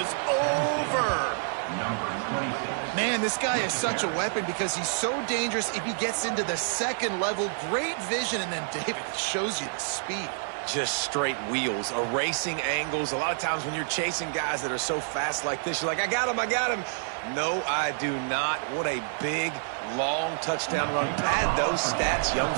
over. Man, this guy is such a weapon because he's so dangerous if he gets into the 2nd level. Great vision, and then David shows you the speed. Just straight wheels, erasing angles. A lot of times when you're chasing guys that are so fast like this, you're like, I got him, I got him. No, I do not. What a big, long touchdown run. Pad those stats, young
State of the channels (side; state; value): left; silent; 59 dB below the other